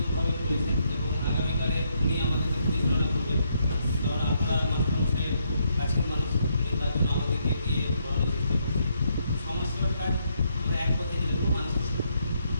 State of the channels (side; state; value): both; inverted; correlation -0.75